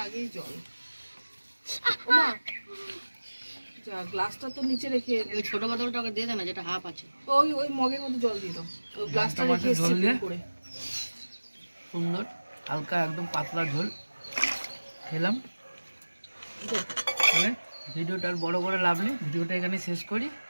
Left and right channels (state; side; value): inverted; both; correlation -1.00